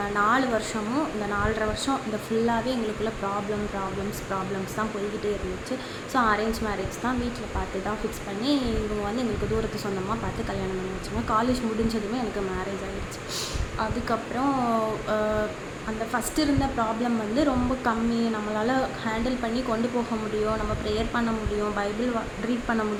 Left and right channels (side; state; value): both; identical; correlation 1.00